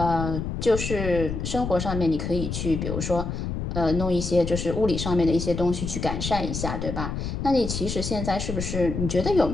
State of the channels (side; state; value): left; noise; rumble, 4 dB below the sound